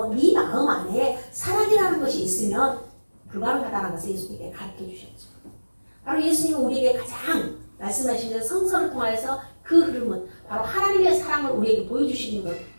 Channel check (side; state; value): both; inverted; correlation -1.00